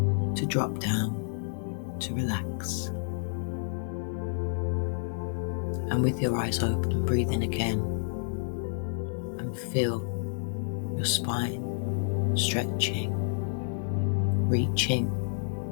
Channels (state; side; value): silent; right; digital silence